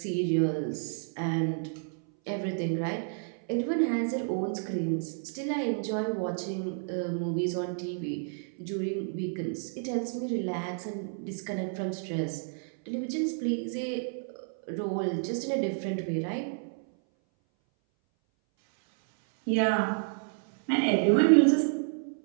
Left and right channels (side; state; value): left; silent; 58 dB below the other